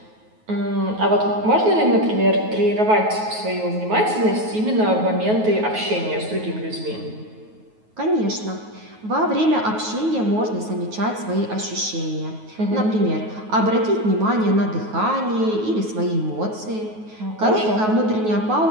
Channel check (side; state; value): left; late; 9.4 ms